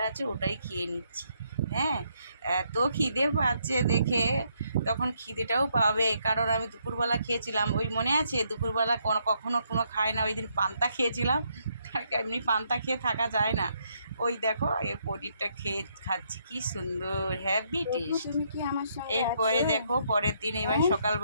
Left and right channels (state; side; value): inverted; both; correlation -0.74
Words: আছে ওটাই খেয়ে নিচ্ছি। হ্যাঁ, এত খিদে পাচ্ছে দেখে, তখন খিদেটাও পাবে, কারণ আমি দুপুরবেলা খেয়েছিলাম। ওই মনে আছে দুপুরবেলা কখনো কোনো খায় না, ওই দিন পান্তা খেয়েছিলাম। এমনি পান্তা খেয়ে থাকা যায় না। ওই দেখো এই পনিরটা খাচ্ছি, কি সুন্দর, হ্যাভি প্রভু টেস্ট। তুমি কি আমার সঙ্গে এরপরে আছো? দেখো পরের দিন, এবার হ্যাঁ,